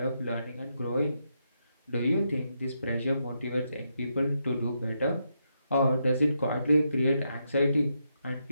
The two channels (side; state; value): both; inverted; correlation -0.81